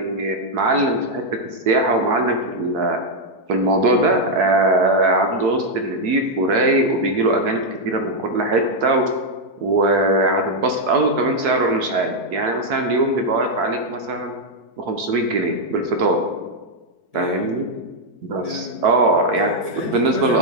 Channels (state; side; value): late; left; 4.6 ms